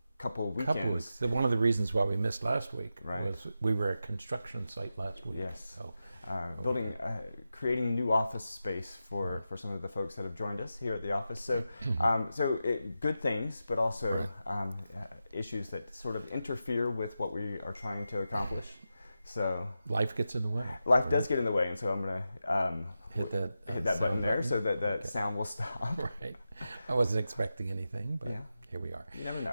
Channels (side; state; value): both; inverted; correlation -0.90